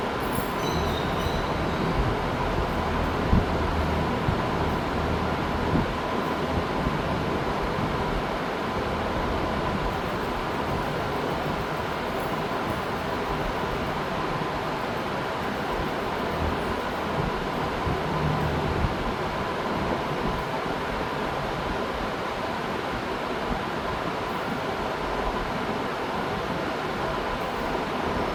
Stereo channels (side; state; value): both; identical; correlation 1.00